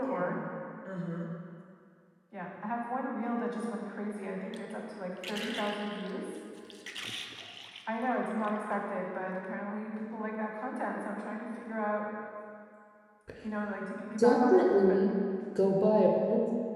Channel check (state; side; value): identical; both; correlation 1.00